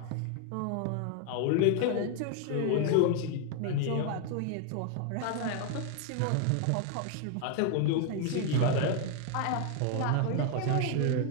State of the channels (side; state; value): both; different; correlation 0.00